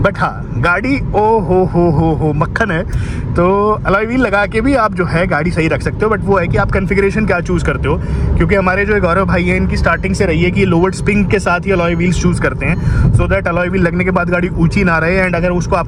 बट हाँ गाड़ी ओ हो मक्खन है। तो अलॉय व्हील लगा के भी आप जो है गाड़ी सही रख सकते हो, बट वो है कि आप कन्फिगरेशन क्या चूज़ करते हो, क्योंकि हमारे जो गौरव भाई हैं इनकी स्टार्टिंग से रही है कि लोवर्ड स्प्रिंग के साथ ही अलॉय व्हील्स चूज़ करते हैं, सो दैट अलॉय व्हील लगने के बाद गाड़ी ऊंची ना रहे, एंड अगर उसको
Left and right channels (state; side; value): identical; both; correlation 1.00